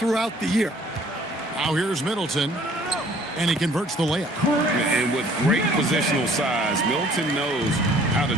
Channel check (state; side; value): normal; both; correlation 0.56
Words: the year. Now here's Middleton, and he converts the layup. And with great positional size, Middleton knows how to